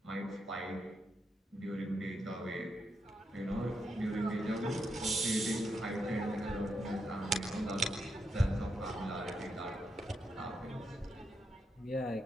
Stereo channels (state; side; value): normal; both; correlation 0.83